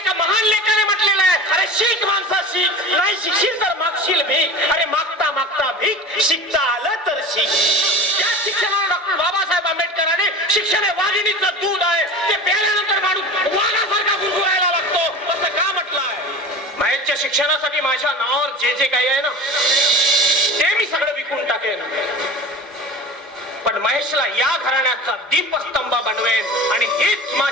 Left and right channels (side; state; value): both; normal; correlation 0.33